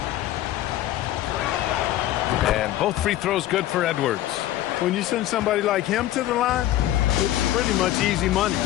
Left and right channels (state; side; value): quieter; right; 13.9 dB